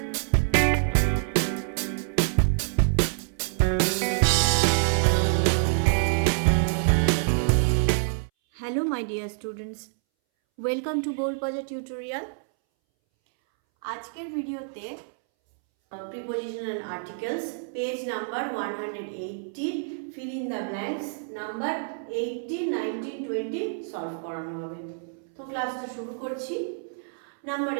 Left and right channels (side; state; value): left; silent; 60 dB below the other